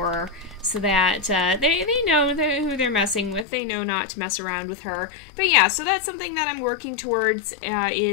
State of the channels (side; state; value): right; drops out; at 3.5 s